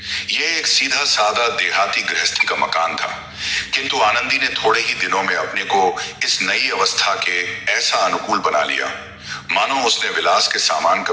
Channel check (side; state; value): both; identical; correlation 1.00